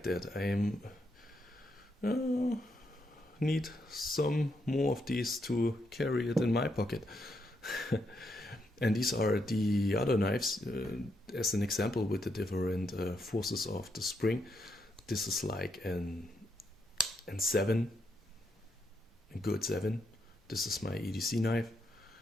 that. I need some more of these to carry it in my pocket. And these are the other knives, as an example, with the different forces of the spring. This is like an 7, a good 7. This is my EDC knife.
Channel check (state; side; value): normal; both; correlation 0.79